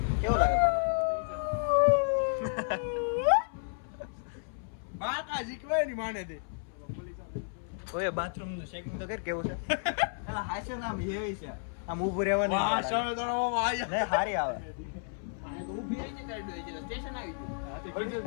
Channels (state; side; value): silent; right; 56 dB below the other